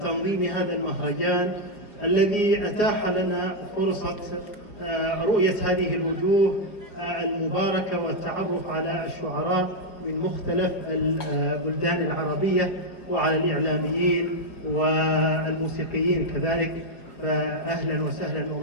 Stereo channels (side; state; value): right; late; 4.9 ms